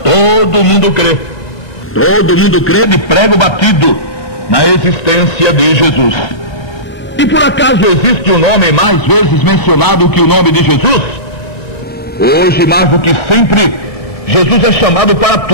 Todo mundo crê de prego batido na existência de Jesus. E por acaso existe um nome mais vezes mencionado que o nome de Jesus? Hoje, mais do que sempre, Jesus é chamado para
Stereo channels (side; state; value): right; late; 1.3 ms